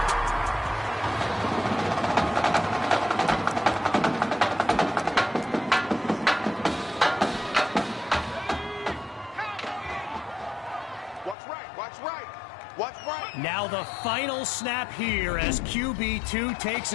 Now the final snap here as QB2 takes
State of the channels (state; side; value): drops out; right; at 11.4 s